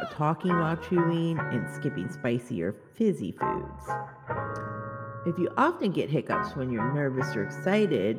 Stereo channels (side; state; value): both; identical; correlation 1.00